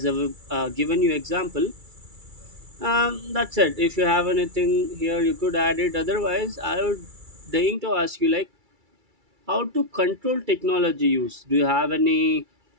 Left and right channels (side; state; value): left; late; 2.3 ms